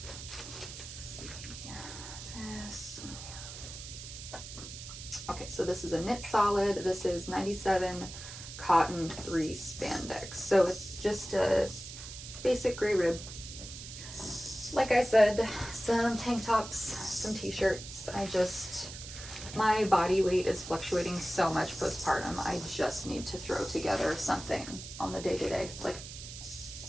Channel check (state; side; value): noise; right; hiss, 11 dB below the sound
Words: Okay, so this is a knit solid. This is 97 cotton, 3 spandex. So it's just a basic gray rib. Like I said, some tank tops, some t-shirts. My body weight is fluctuating so much postpartum. I just need to throw together something on the day-to-day. Like,